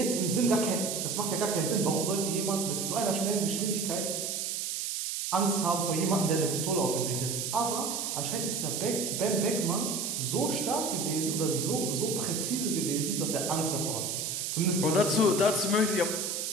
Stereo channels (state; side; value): noise; right; hiss, 2 dB below the sound